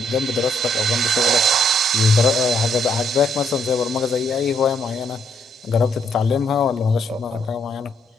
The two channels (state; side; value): normal; both; correlation 0.71